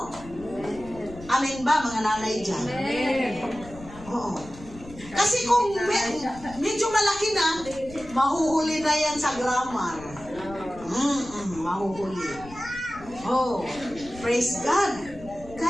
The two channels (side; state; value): left; noise; rumble, 17 dB below the sound